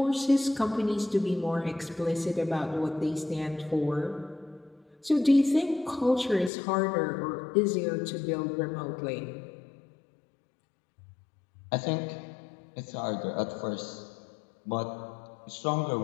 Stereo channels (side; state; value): right; drops out; at 6.5 s